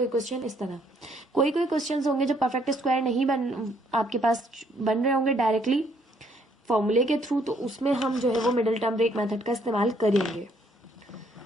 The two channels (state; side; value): normal; both; correlation 0.67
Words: क्वेश्चन इस तरह। कोई क्वेश्चंस होंगे जो परफेक्ट स्क्वायर नहीं आपके पास बन रहे होंगे डायरेक्टली फॉर्मूले के थ्रू, तो उसमें हम जो है वो मिडिल टर्म ब्रेक मेथड का इस्तेमाल करेंगे।